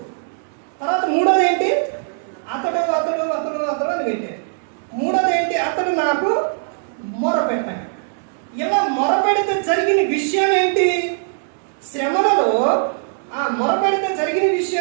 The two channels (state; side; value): silent; left; digital silence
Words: తర్వాత మూడోది ఏంటి? అతడు అని పెట్టాడు. మూడోది ఏంటి? అతడు నాకు మొరపెట్టాడు. ఇలా మొరపెడితే జరిగిన విషయం ఏంటి? శ్రమలలో ఆ మొరపెడితే జరిగిన